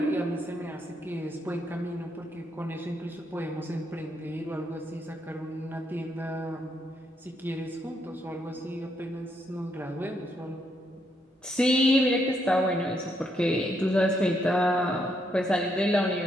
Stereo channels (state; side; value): normal; both; correlation 0.76